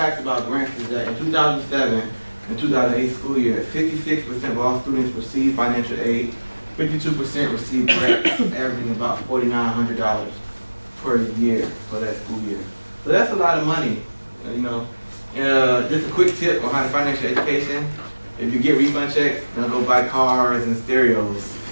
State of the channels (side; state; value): both; inverted; correlation -1.00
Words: about grants is that in 2007 and 2008 school year, 56% of all students received financial aid, 52% received grants, averaging about $4,900 per year for that school year. So that's a lot of money, you know. Just a quick tip on how to financial education. If you get refund checks, don't go buy cars and stereos.